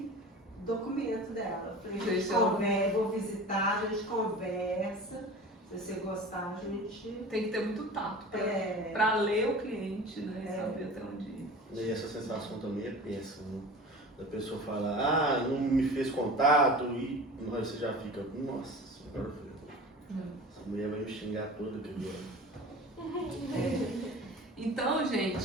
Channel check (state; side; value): normal; both; correlation 0.37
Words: documento dela. Eu falei, a gente conversa, vou visitar, a gente conversa. Se você gostar, a gente. Tem que ter muito tato É. pra ler o cliente, né? E saber até onde ir. E essa sensação também é péssima. Né? Da pessoa falar, ah, não me fez contato, e você já fica, nossa senhora, essa mulher vai me xingar toda que Então,